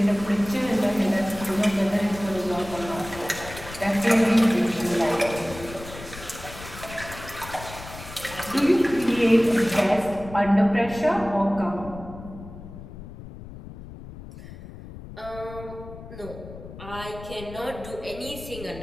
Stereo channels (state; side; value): noise; left; rumble, 14 dB below the sound